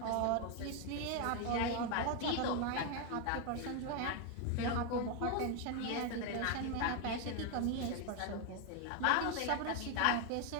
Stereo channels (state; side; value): different; both; correlation 0.01